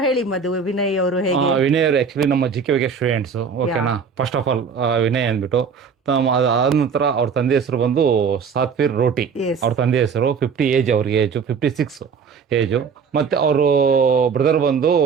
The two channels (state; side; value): quieter; left; 6.0 dB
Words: ಹೇಳಿ ಮಧು, ವಿನಯ್ ಅವರು ಹೇಗೆ? ವಿನಯ್ ಅವರು ಆಕ್ಚುಲಿ ನಮ್ಮ JKVK ಸ್ಟೂಡೆಂಟ್ಸ್. ಓಕೆನಾ, ಫಸ್ಟ್ ಆಫ್ ಆಲ್ ವಿನಯ್ ಅಂದ್ಬಿಟ್ಟು ಆದ ನಂತರ ಅವ್ರ ತಂದೆ ಹೆಸರು ಬಂದು ಸಾತ್ವೀರ್ ರೋಟಿ. ಅವ್ರ ತಂದೆ ಹೆಸರು 50 ಏಜ್, ಅವ್ರಿಗೆ ಏಜು 56 ಏಜು. ಮತ್ತೆ ಅವರು ಬ್ರದರ್ ಬಂದು